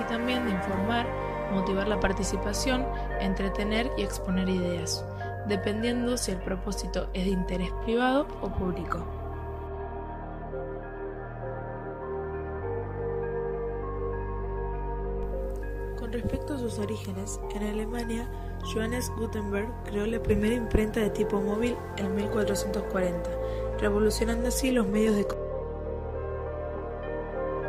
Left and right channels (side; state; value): both; identical; correlation 1.00